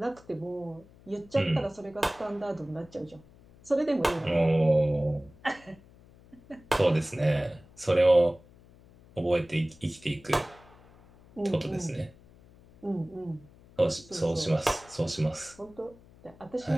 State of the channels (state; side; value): noise; left; hum, 25 dB below the sound